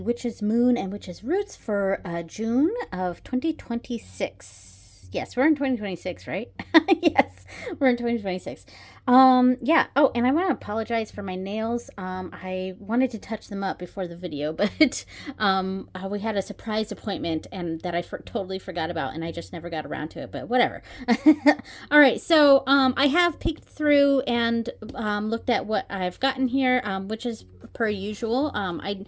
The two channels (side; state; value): both; identical; correlation 1.00